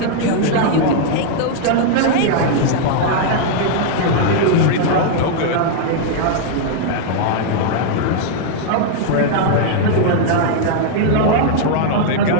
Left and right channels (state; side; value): different; both; correlation -0.01